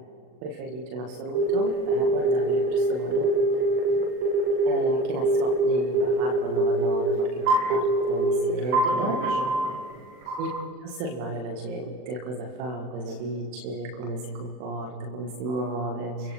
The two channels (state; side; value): late; left; 40 ms